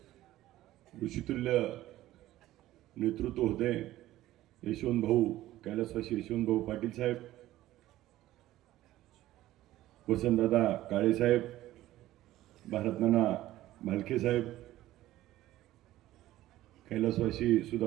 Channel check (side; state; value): left; quieter; 15.1 dB